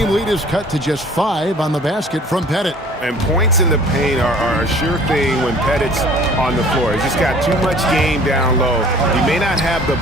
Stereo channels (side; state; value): both; normal; correlation 0.50